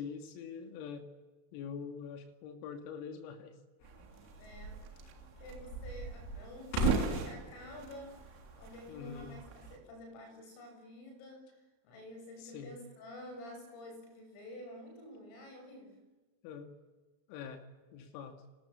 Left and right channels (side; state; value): right; late; 34 ms